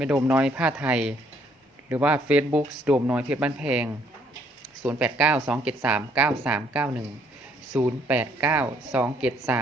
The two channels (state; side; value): normal; both; correlation 0.66